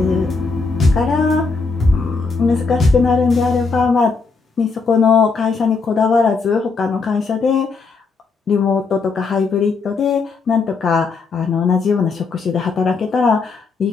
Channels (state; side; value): quieter; right; 4.4 dB